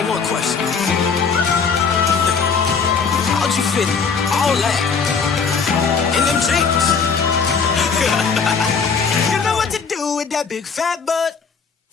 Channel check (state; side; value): quieter; right; 5.6 dB